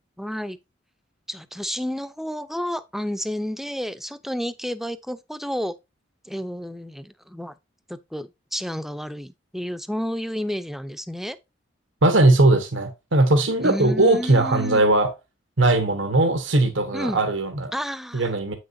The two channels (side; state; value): both; normal; correlation 0.38